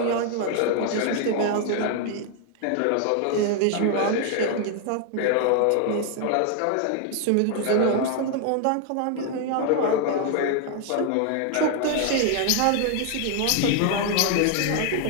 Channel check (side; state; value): both; different; correlation 0.00